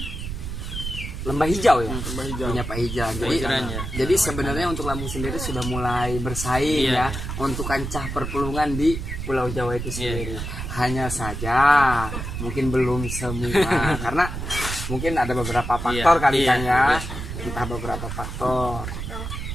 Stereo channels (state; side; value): noise; right; rumble, 6 dB below the sound